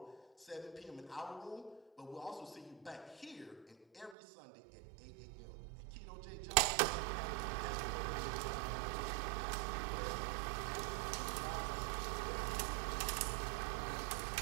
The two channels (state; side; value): drops out; left; at 4.2 s